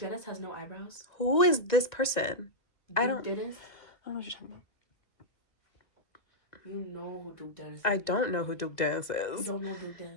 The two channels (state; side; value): late; right; 1.9 ms